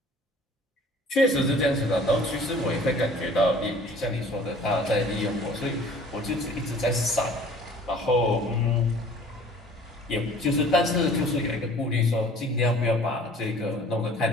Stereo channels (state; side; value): normal; both; correlation 0.50